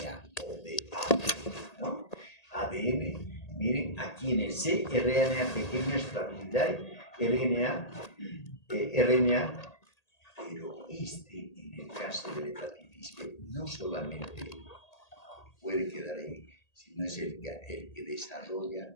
o de ADN, ¿no? ADN, miren, aquí en el C, RNA pequeña estabilidad, RNA, pero en el caso de la hepatitis B, no solamente puede quedar ahí, sino es el que desarrolla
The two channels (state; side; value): late; right; 1.8 ms